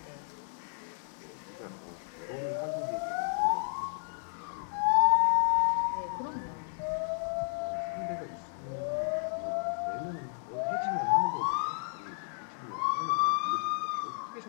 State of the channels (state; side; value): silent; right; digital silence